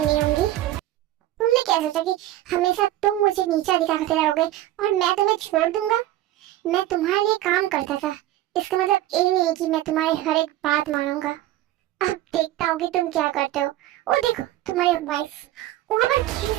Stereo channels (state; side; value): quieter; left; 14.7 dB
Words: होंगी। तुमने क्या सोचा कि हमेशा तुम मुझे नीचा दिखाते रहोगे और मैं तुम्हें छोड़ दूंगा? मैं तुम्हारे लिए काम करता था, इसका मतलब ये नहीं है कि मैं तुम्हारी हर एक बात मानूंगा। अब देखता हूँ कि तुम क्या करते हो। ओ देखो तुम्हारी वाइफ वहां पर